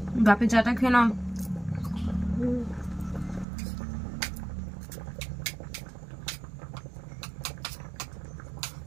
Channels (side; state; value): left; drops out; at 3.5 s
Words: বাপে চাটা খেয়ে নাও।